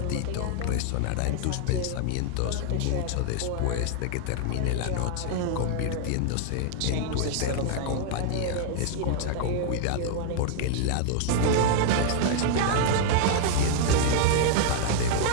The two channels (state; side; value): different; both; correlation 0.00